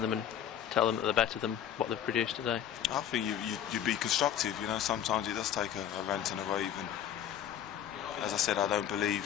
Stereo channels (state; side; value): quieter; right; 10.0 dB